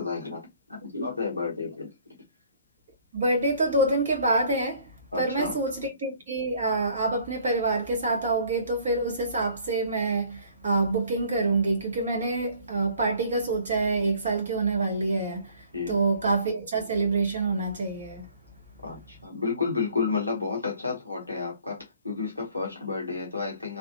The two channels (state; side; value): inverted; both; correlation -0.56